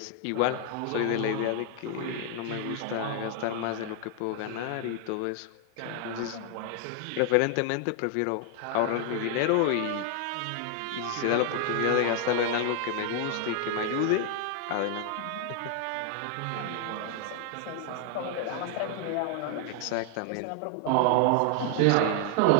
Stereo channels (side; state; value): both; different; correlation 0.00